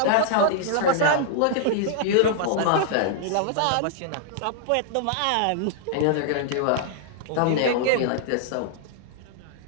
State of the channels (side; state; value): both; different; correlation -0.01